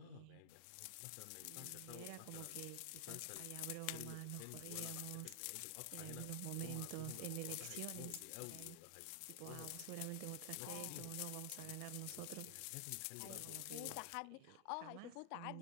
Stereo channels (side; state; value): both; different; correlation 0.00